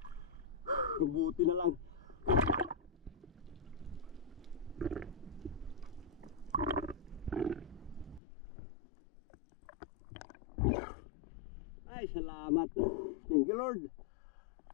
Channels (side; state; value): right; drops out; at 8.2 s